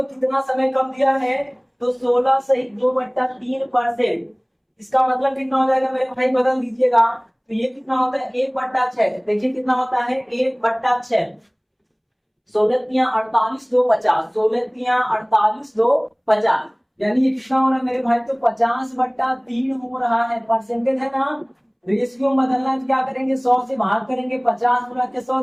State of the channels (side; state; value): both; identical; correlation 1.00